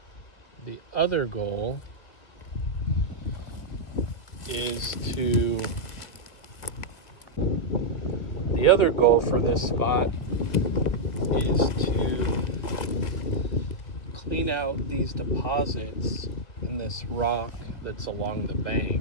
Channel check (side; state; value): right; late; 1.7 ms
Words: The other goal for this spot is to clean out these deposits in this rock that's along the